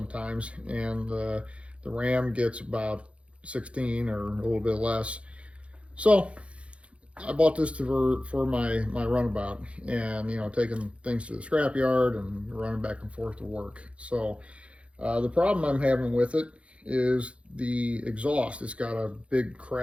and the Ram gets about 16 or a little bit less. So I bought this for my runabout, and taking things to the scrapyard and running back and forth to work. So the problem I'm having with it is the exhaust. It's got a big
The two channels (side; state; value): left; late; 0.061 ms